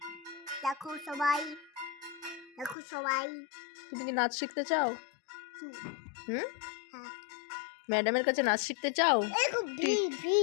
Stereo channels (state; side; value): drops out; right; at 2.8 s